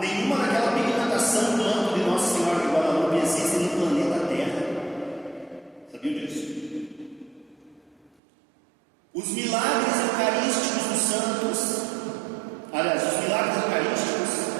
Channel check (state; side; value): drops out; left; at 8.2 s